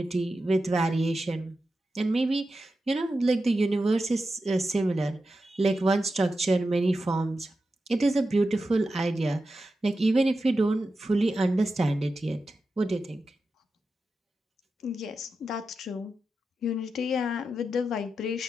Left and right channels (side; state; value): both; normal; correlation 0.91